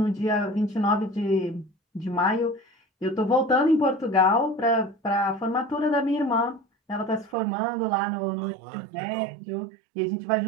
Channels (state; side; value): drops out; left; at 7.4 s